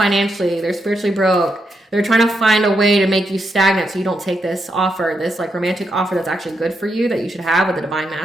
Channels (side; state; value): both; normal; correlation 0.82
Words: They're spiritually broke. They're trying to find a way to make you stagnant so you don't take this offer, this like romantic offer that's actually good for you that you should have with the Divine